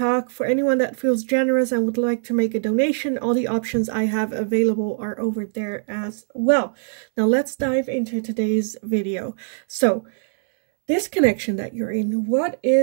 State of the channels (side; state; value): left; silent; 64 dB below the other